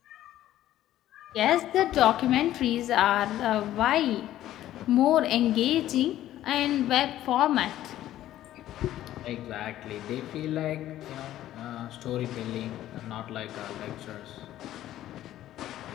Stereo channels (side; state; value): right; quieter; 13.3 dB